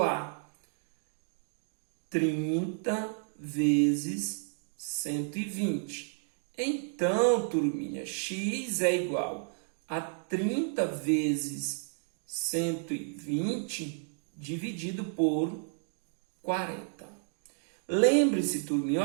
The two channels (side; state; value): left; silent; 56 dB below the other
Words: a 30 vezes 120. Então, turminha, x é igual a 30 vezes 120 dividido por 40. Lembre-se, turminha,